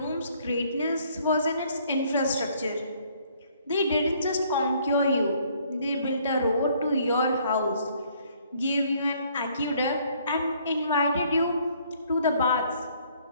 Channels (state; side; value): inverted; both; correlation -0.63